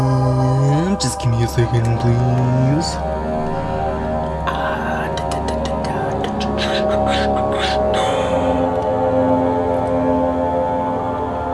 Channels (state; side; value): identical; both; correlation 1.00